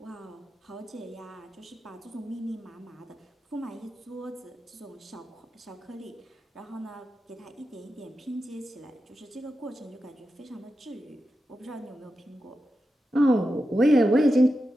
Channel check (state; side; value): normal; both; correlation 0.90